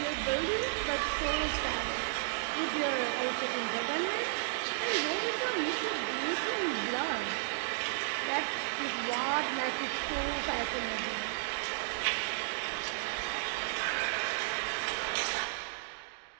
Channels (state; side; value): silent; left; digital silence